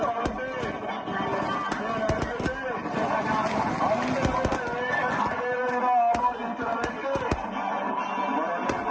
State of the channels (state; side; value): identical; both; correlation 1.00